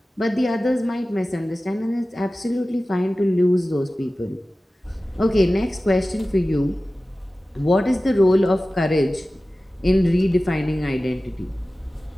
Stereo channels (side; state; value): both; normal; correlation 0.96